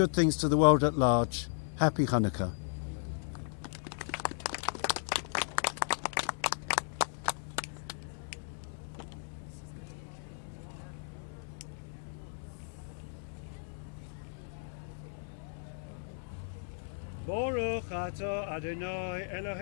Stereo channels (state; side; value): silent; right; digital silence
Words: things to the world at large. Happy Hanukkah. Baruch atah Adonai